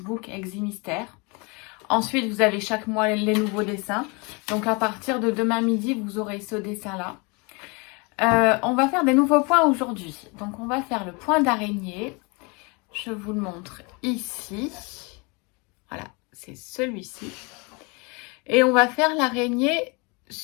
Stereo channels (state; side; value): quieter; right; 29.8 dB